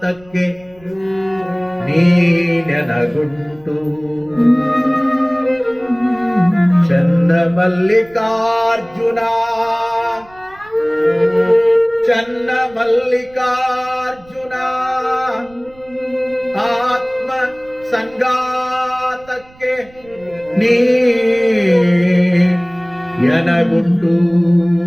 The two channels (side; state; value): right; noise; rumble, 26 dB below the sound